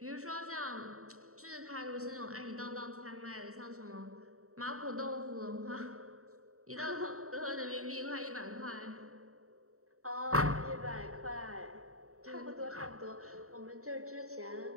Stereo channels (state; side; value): late; left; 0.64 ms